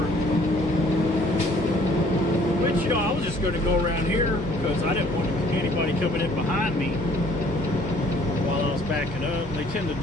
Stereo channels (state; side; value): normal; both; correlation 0.58